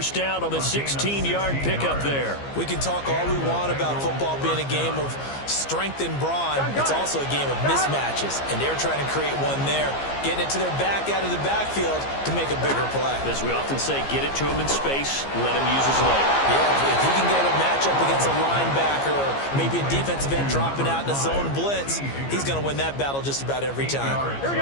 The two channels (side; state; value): right; late; 15 ms